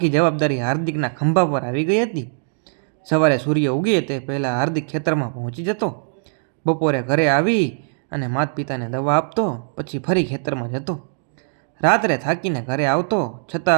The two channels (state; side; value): silent; left; digital silence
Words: જવાબદારી હાર્દિકના ખંભા પર આવી ગઈ હતી. સવારે સૂર્ય ઉગે તે પહેલાં હાર્દિક ખેતરમાં પહોંચી જતો, બપોરે ઘરે આવી અને માતા પિતાને દવા આપતો, પછી ફરી ખેતરમાં જતો. રાત્રે થાકીને ઘરે આવતો,